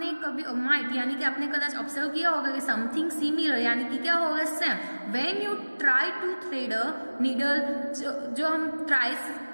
कभी might यानी कि आपने कदाच ऑब्जर्व किया होगा कि something similar यानी कि क्या होगा, same. when you try to thread a needle, जो हम ट्राई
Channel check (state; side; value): inverted; both; correlation -1.00